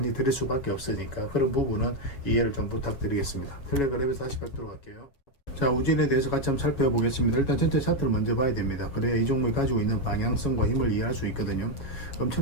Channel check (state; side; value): late; right; 7.2 ms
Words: 드릴 수밖에 없으니까 그런 부분은 이해를 좀 부탁드리겠습니다. 텔레그램에서 다시 뵙도록 할게요. 자, 우진에 대해서 같이 한번 살펴보겠습니다. 일단 전체 차트를 먼저 봐야 됩니다. 그래야 이 종목이 가지고 있는 방향성과 힘을 이해할 수 있거든요.